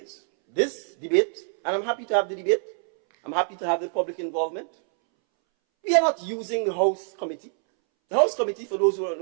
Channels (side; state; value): left; silent; 61 dB below the other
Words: this debate, and I'm happy to have the debate, I'm happy to have the public involvement. We are not using the House Committee. The House Committee, for those who don't